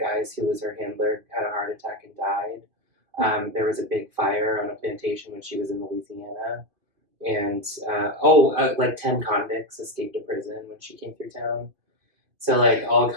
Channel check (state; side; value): late; left; 2.5 ms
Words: who was her handler had a heart attack and died. There was a big fire on a plantation when she was in Louisiana. And, like 10 convicts escaped to prison when she came through town. So, like, all